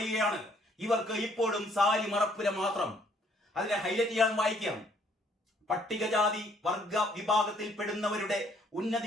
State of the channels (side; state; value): both; normal; correlation 0.65